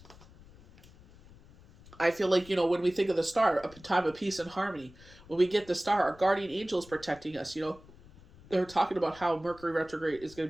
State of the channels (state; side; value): noise; left; rumble, 23 dB below the sound